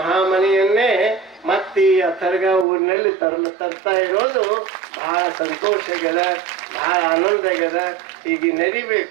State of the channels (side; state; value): left; drops out; at 2.7 s